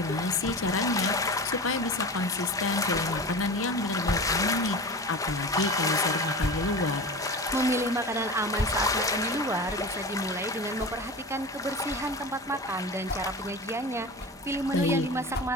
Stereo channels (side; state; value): both; normal; correlation 0.30